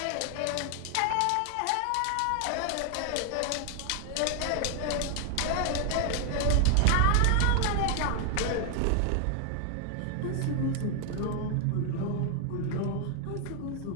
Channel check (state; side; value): different; both; correlation 0.00